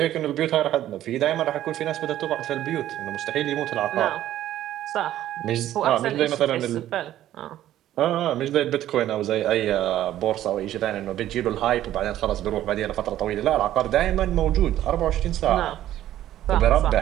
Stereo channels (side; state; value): left; quieter; 12.8 dB